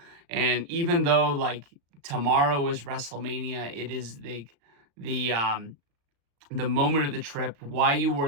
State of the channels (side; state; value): left; late; 35 ms